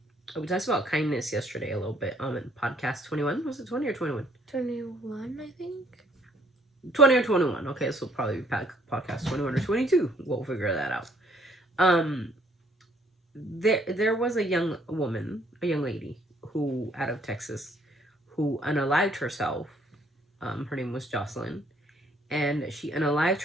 We talked about kindness yesterday a little bit in podcast 21. Was it 20 or 21? 21, I think. 20 or 21. Okay, so probably podcast 21 or 22. We'll figure that out. There was a young lady who out of Texas who unalived herself. Her name was Jocelyn, and she unalived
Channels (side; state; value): both; normal; correlation 0.64